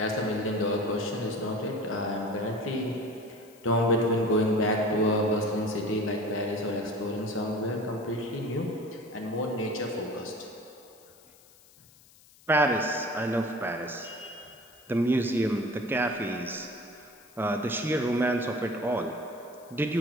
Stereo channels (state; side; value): noise; left; hiss, 26 dB below the sound